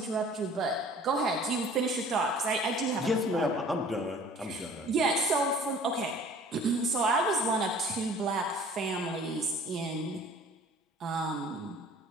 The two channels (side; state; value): both; normal; correlation 0.50